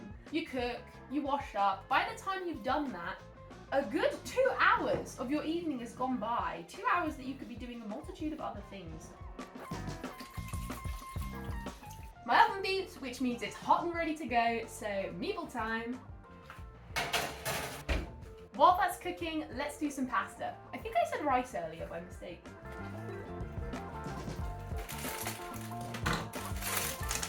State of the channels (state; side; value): identical; both; correlation 1.00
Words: You cook, you wash up, by the time you've done that, a good 2 hours of your evening has gone by. 2 hours that you could be doing a multitude of other things. My oven beeps, which means it's hot and ready to go, so meatball time. While that's cooking, let's do some pasta. I think I said rice earlier by mistake.